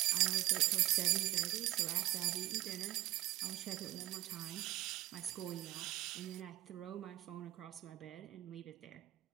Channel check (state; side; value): quieter; left; 17.3 dB